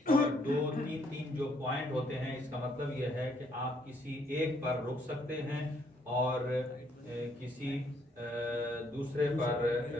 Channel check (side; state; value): both; normal; correlation 0.69